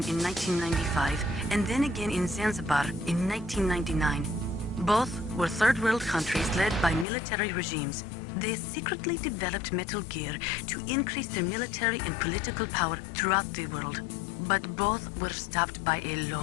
in 1995, and then again in Zanzibar in 1999. Both were third world countries led by military regimes. They secretly developed Metal Gear to increase their military and political power throughout the world. But both were stopped by a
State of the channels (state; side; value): drops out; right; at 7.1 s